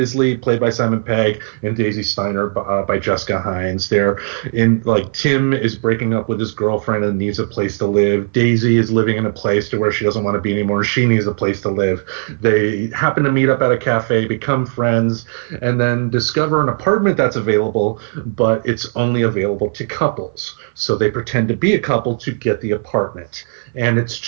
played by Simon Pegg, and Daisy Steiner by Jessica Hines. Tim is breaking up with his girlfriend and needs a place to live. Daisy is living in a place to where she doesn't want to be anymore. She needs a place to live. They happen to meet up at a cafe, become friends, and then discover an apartment that's available, but it's only available to couples. So they pretend to be a couple to get the apartment. And it's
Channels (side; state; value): left; silent; 56 dB below the other